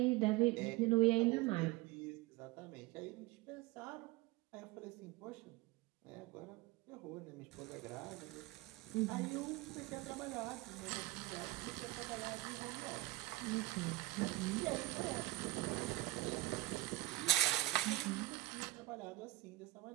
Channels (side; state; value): left; quieter; 18.4 dB